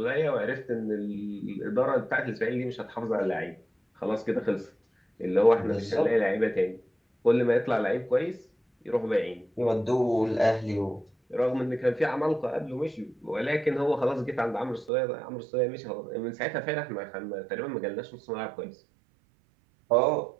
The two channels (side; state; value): left; drops out; at 14.9 s